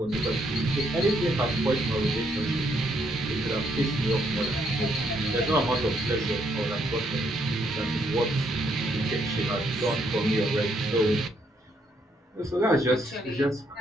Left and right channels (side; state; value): both; normal; correlation 0.73